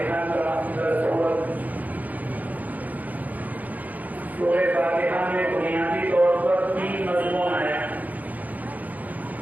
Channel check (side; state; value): left; late; 0.079 ms